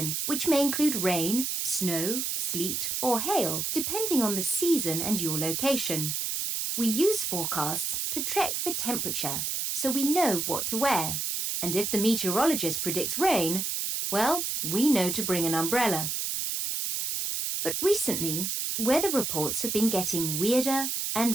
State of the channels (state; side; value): noise; right; hiss, 1 dB below the sound